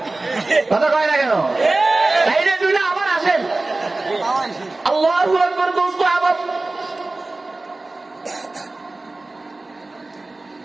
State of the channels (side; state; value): left; quieter; 3.1 dB